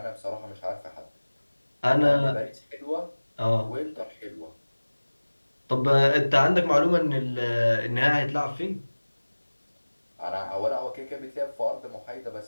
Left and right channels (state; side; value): inverted; both; correlation -1.00